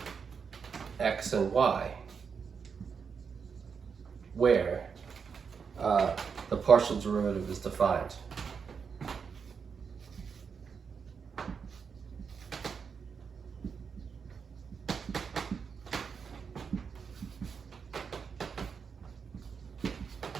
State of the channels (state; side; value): quieter; left; 6.1 dB